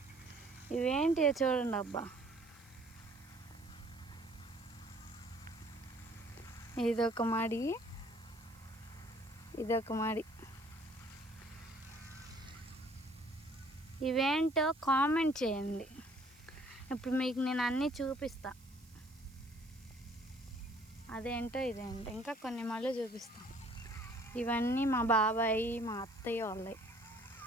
ఇవేంటి చూడండి అబ్బా, ఇదొక మడి, ఇదొక మడి. ఇవేంటో కామెంట్ చేయండి. ఇప్పుడు మీకు నేను అన్నీ చూపిస్తా. అదేంటో ఇదేంటో ఇంకా కొన్ని మళ్ళీ చూపిస్తాం. ఇవన్నీ మా బాబాయి, మా అత్తయ్య వాళ్ళవి.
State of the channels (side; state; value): right; noise; hiss, 26 dB below the sound